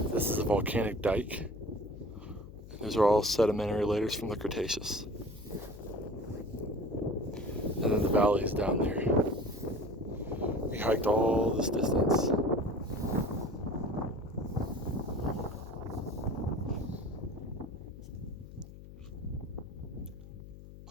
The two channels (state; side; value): noise; left; hum, 15 dB below the sound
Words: This is a volcanic dike. Those are all sedimentary layers from the Cretaceous. And then the valley is down there. We hiked all this distance.